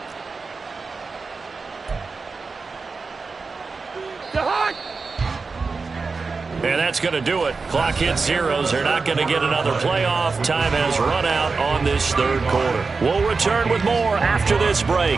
And that's going to do it. Clock hits zeros. They're not going to get another playoff. Time has run out on this third quarter. We'll return with more after this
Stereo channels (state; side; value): quieter; left; 4.4 dB